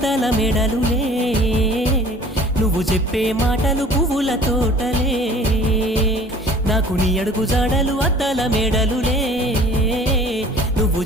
మేడలులే, నువ్వు చెప్పే మాటలు పువ్వుల తోటలే. నాకు నీ అడుగు జాడలు అద్దాల మేడలులే, నువ్వు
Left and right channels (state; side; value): normal; both; correlation 0.48